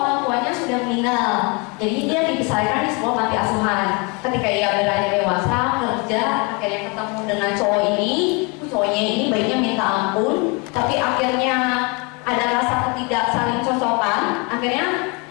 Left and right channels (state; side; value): quieter; right; 30.6 dB